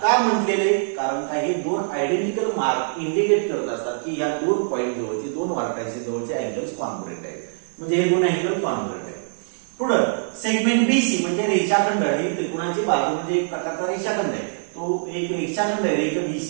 काय म्हटलेले कारण काही दोन आयडेंटिकल मार्क इंडिकेट करत असतात की या दोन पॉइंट जवळचे दोन वर्टायचे जवळचे अँगल्स कॉन्ग्रुएंट आहेत म्हणजे हे दोन अँगल कॉन्ग्रुएंट आहेत. पुढे सेगमेंट बीसी म्हणजे रेषाखंड हे त्रिकोणाची बाजू म्हणजे एक प्रकारचा रेषाखंड आहे. तो एक रेषाखंड आहे रेख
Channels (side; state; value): left; silent; digital silence